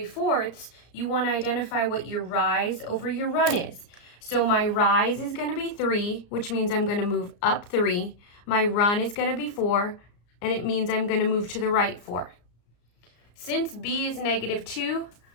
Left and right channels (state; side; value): late; right; 34 ms